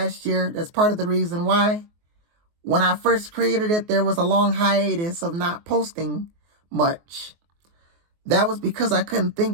year. That's part of the reason why. When I first created it, there was a long hiatus of not posting much. That was because I couldn't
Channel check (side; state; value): left; late; 24 ms